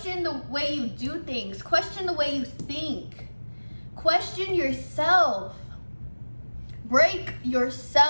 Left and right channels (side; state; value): both; inverted; correlation -1.00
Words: the way you do things. Question the way you think. Question yourself. Break